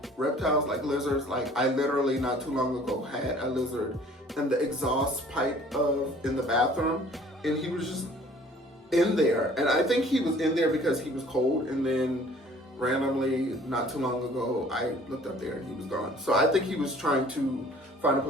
reptiles like lizards. Like, I literally not too long ago had a lizard in the exhaust pipe in the bathroom, and he was just in there. And I think he was in there because he was cold, and then randomly not too long ago I looked up there and he was gone. So I think he was trying to find a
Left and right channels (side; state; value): both; normal; correlation 0.53